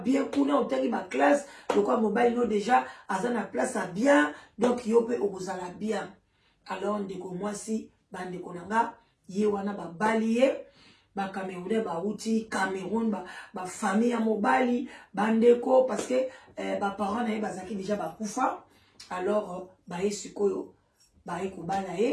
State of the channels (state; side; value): identical; both; correlation 1.00